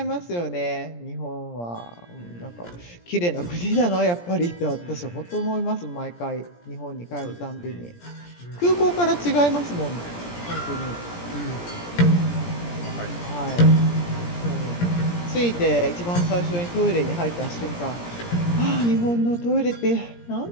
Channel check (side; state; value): right; late; 17 ms